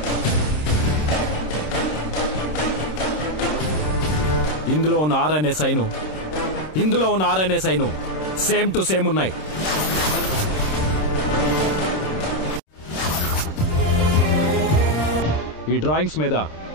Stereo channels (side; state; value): right; late; 26 ms